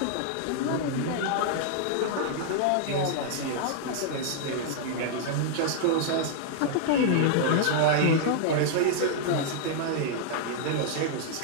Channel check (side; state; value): both; different; correlation -0.01